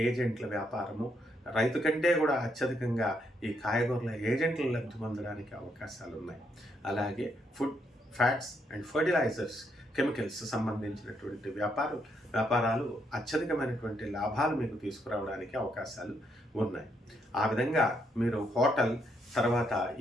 ఏజెంట్ల వ్యాపారము, రైతు కంటే కూడా అత్యధికంగా ఈ కాయగూరల ఏజెంట్లు లబ్ధి పొందడానికి అవకాశాలు ఉన్నాయి. అలాగే food, fats and fertilizers, chemicals సంబంధించినటువంటి వ్యాపారాలు అత్యధికమైనటువంటి లాభాలు మీకు తీసుకురావడానికి అవకాశాలు ఉన్నాయి. ఆ విధంగా మీరు హోటల్, తర్వాత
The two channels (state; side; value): normal; both; correlation 0.76